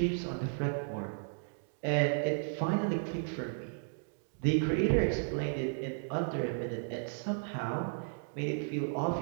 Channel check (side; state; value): left; silent; digital silence